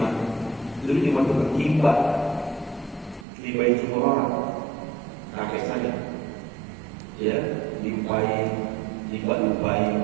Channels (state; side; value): drops out; left; at 3.2 s